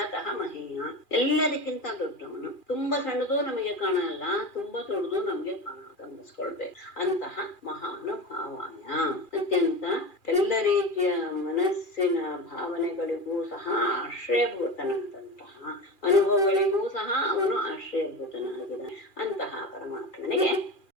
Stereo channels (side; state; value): right; late; 2.4 ms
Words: ಮಹೀಯ, ಎಲ್ಲದಕ್ಕಿಂತ ದೊಡ್ಡವನು. ತುಂಬಾ ಸಣ್ಣದು ನಮಗೆ ಕಾಣಲ್ಲ, ತುಂಬಾ ದೊಡ್ಡದು ನಮಗೆ ಗಮನಿಸ್ಕೊಳ್ಬೇಕು. ಅಂತಹ ಮಹಾನುಭಾವಾಯ, ಅತ್ಯಂತ ಎಲ್ಲ ರೀತಿಯ ಮನಸ್ಸಿನ ಭಾವನೆಗಳಿಗೂ ಸಹ ಆಶ್ರಯಭೂತನಾದಂತಹ, ಅನುಭವಗಳಿಗೂ ಸಹ ಅವನು ಆಶ್ರಯಭೂತನಾಗಿದ್ದಾನೆ. ಅಂತಹ ಪರಮಾತ್ಮನಿಗೆ